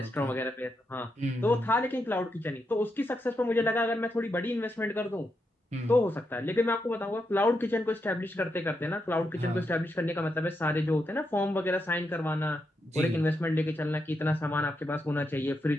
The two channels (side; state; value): both; normal; correlation 0.83